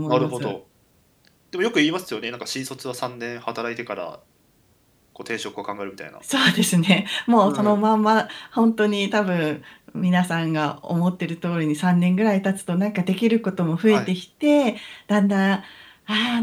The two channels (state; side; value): identical; both; correlation 1.00